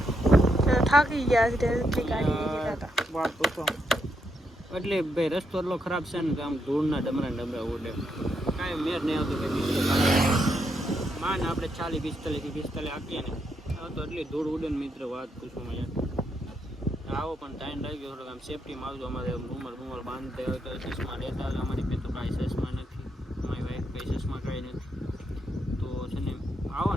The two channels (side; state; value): both; normal; correlation 0.80